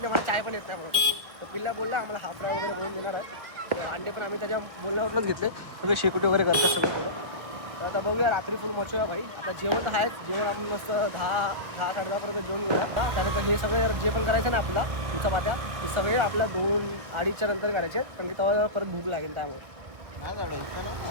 मला चाय पण येत नाही म्हणून. तर पिल्ल्या बोलला आम्हाला हाफ फ्राय वगैरे बनवून देणार आहे. अंडे पण आम्ही त्याच्या बोलण्यावरूनच घेतले, सगळे शेकोटी वगैरे करतात सगळं सगळं. तर आता बघूया रात्री फुल मचूया भाई. आता जेवण तर आहेच, जेवण आपण मस्त 10-10:30पर्यंत जेवण घेऊया. त्यानंतर हे सगळे जे पण करायचं ना आपला तुमचा पात्या, हे सगळे आपल्या 2-2:30च्या नंतर करायचे, कारण की तेव्हा परत भूक लागेल. त्यामुळे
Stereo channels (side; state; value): left; late; 1.7 ms